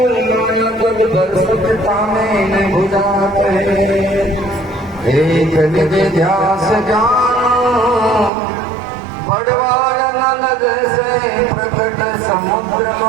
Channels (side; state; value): left; drops out; at 8.3 s